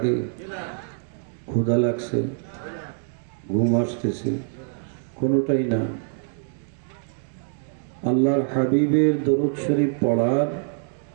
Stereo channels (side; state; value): left; silent; 57 dB below the other